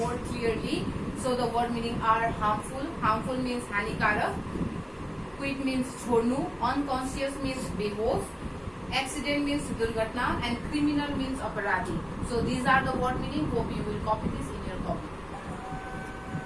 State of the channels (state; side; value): identical; both; correlation 1.00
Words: clearly. So the word meaning are harmful. Harmful means हानिकारक. Quit means छोड्नु. Unconscious means बेहोश. Accident means दुर्घटना and criminal means अपराधी. So these are the word meaning. Hope you will copy this in your copy.